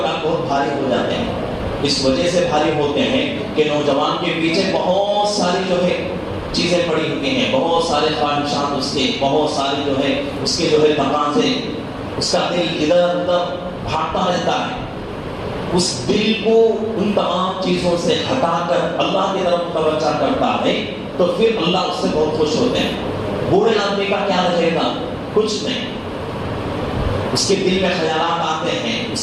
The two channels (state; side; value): identical; both; correlation 1.00